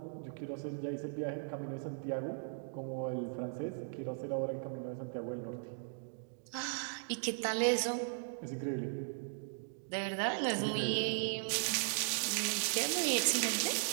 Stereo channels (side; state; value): left; silent; digital silence